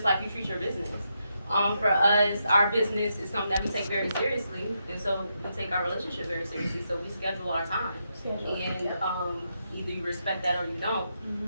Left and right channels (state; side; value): inverted; both; correlation -0.82